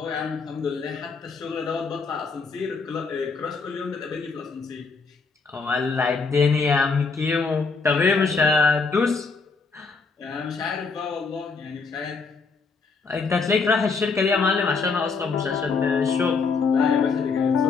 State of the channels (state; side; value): quieter; right; 4.7 dB